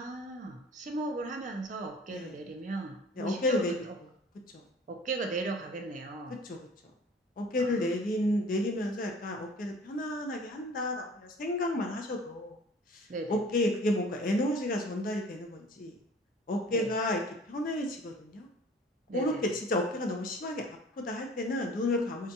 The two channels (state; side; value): normal; both; correlation 0.48